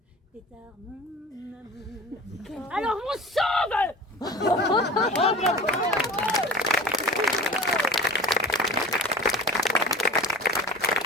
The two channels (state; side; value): normal; both; correlation 0.37